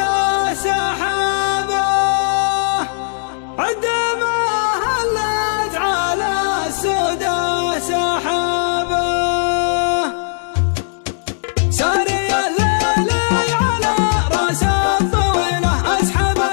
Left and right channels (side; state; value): right; silent; 68 dB below the other